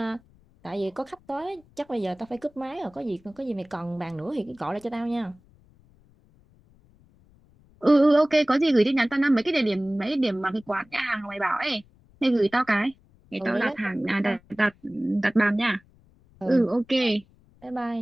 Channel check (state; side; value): noise; left; rumble, 30 dB below the sound